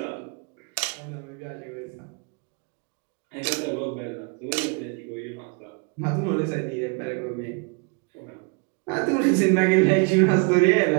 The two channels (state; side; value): quieter; left; 33.2 dB